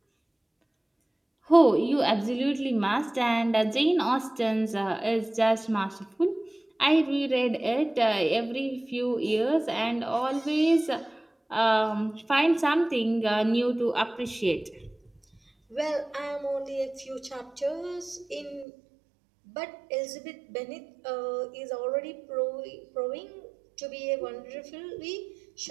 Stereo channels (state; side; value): drops out; left; at 18.7 s